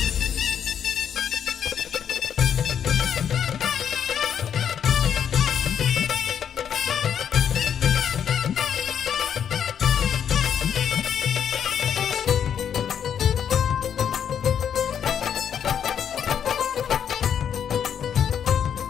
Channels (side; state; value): right; quieter; 8.5 dB